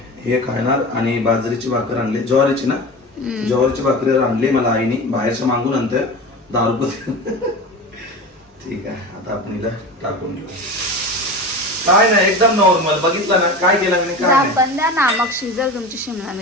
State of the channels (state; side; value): normal; both; correlation 0.30